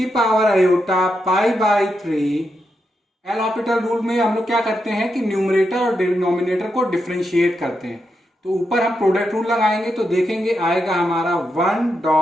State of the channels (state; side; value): normal; both; correlation 0.84